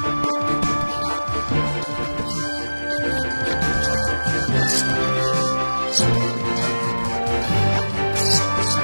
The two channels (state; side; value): inverted; both; correlation -1.00